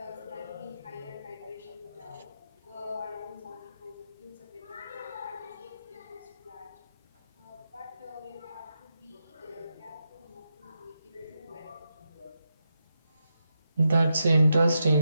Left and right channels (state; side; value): inverted; both; correlation -0.85